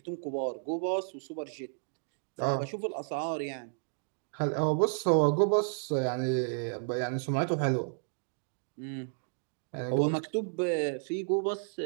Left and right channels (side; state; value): left; silent; digital silence